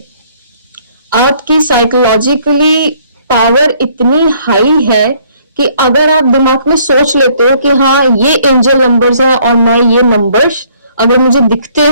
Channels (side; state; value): both; inverted; correlation -0.63